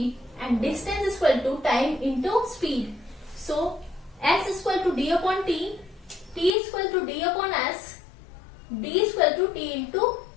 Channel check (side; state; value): right; drops out; at 6.5 s